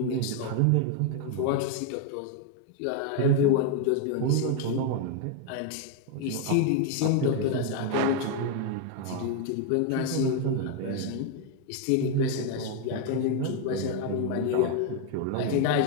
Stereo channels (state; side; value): different; both; correlation 0.00